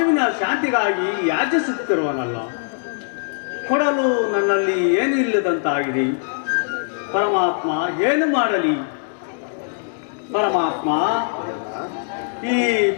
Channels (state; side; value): silent; right; digital silence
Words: ಶಾಂತಿಗಾಗಿ ಯಾಚಿಸುತ್ತಿರುವನಲ್ಲ. ಕೊಡಲು ನನ್ನಲ್ಲಿ ಏನು ಇಲ್ಲದಂತಾಗಿದೆ. ಪರಮಾತ್ಮ ಏನು ಮಾಡಲಿ? ಪರಮಾತ್ಮ, ಈ